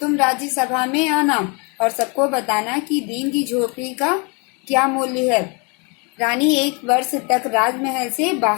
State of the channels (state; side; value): quieter; right; 32.4 dB